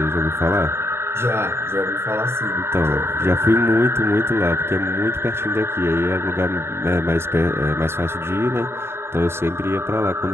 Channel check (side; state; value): left; late; 0.12 ms